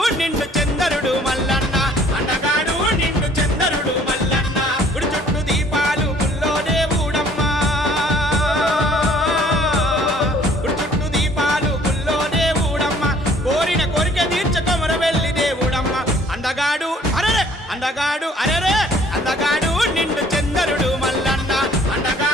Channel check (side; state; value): both; normal; correlation 0.57